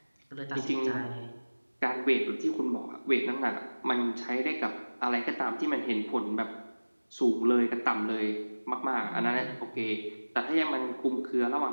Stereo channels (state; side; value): inverted; both; correlation -1.00